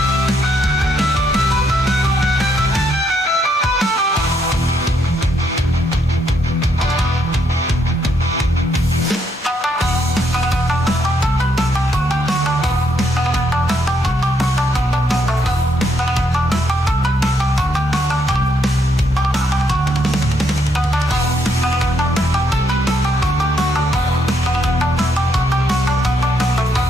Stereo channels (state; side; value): normal; both; correlation 0.74